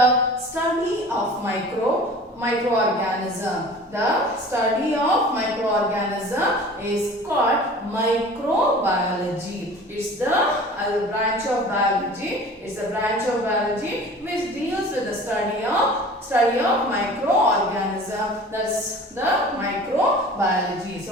study of microorganism. The study of microorganism is called microbiology. It's the branch of biology. It's a branch of biology which deals with the study of microorganism. That's the microbiology.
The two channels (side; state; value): both; normal; correlation 0.42